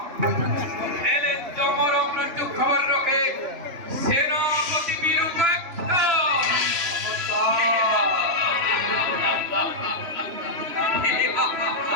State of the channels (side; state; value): left; late; 3.0 ms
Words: এলে জমর মৃত্যু খবর রাখে সেনাপতি বীরুপাক্ষ।